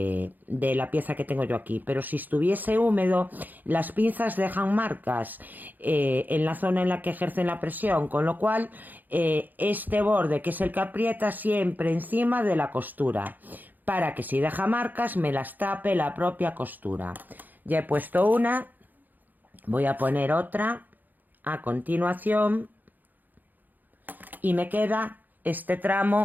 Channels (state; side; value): late; left; 0.085 ms